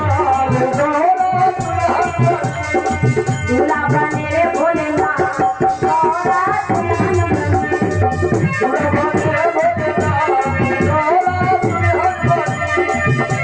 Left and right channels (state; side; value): identical; both; correlation 1.00